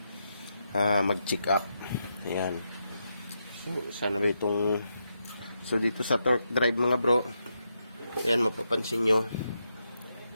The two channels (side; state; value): both; inverted; correlation -0.83